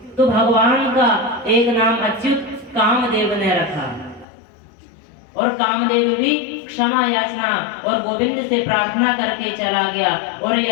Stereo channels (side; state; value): right; drops out; at 4.2 s